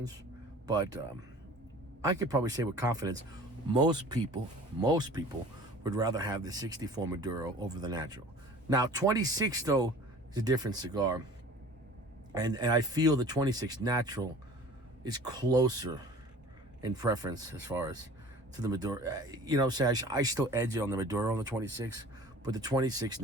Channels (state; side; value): normal; both; correlation 0.45